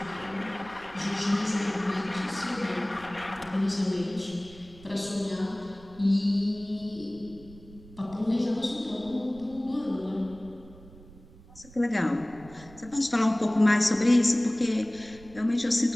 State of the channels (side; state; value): right; noise; rumble, 21 dB below the sound